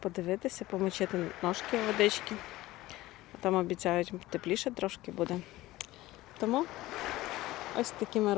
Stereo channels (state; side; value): quieter; right; 17.6 dB